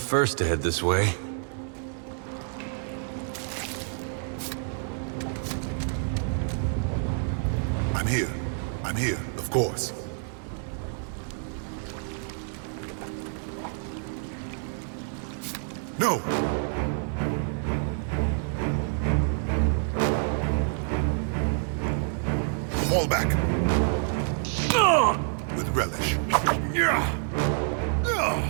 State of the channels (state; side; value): silent; left; 59 dB below the other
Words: to head this way. I'm here. I'm here, of course. No! Fall back. With relish.